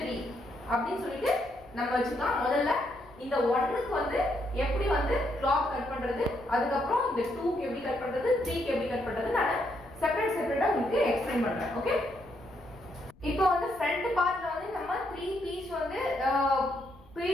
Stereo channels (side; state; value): left; noise; rumble, 26 dB below the sound